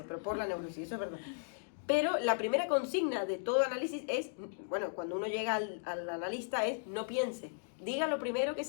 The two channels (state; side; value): silent; right; digital silence